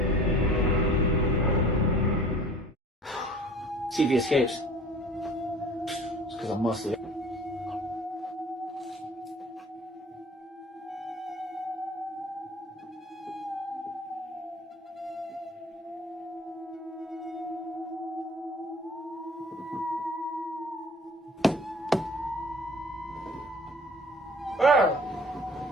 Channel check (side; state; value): both; normal; correlation 0.47